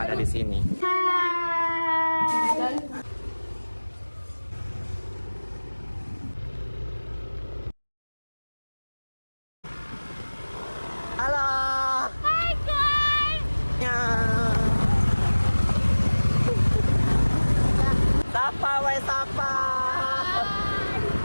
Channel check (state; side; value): inverted; both; correlation -1.00